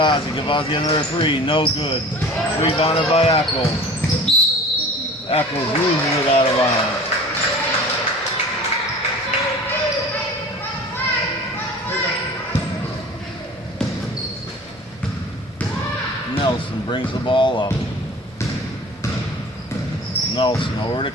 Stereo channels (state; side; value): normal; both; correlation 0.41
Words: Gavazzi another 3, no good. Rebounded by Eccles. Eccles loses it out of bounds. Nelson brings the ball up. Nelson over to